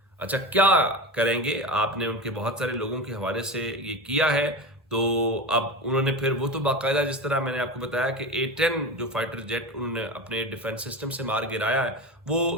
اچھا، کیا کریں گے؟ آپ نے ان کے بہت سارے لوگوں کے حوالے سے یہ کیا ہے. تو اب انہوں نے پھر وہ تو باقاعدہ جس طرح میں نے آپ کو بتایا کہ A-10 جو فائٹر جیٹ انہوں نے اپنے ڈیفنس سسٹم سے مار گرایا ہے،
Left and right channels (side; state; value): both; normal; correlation 0.25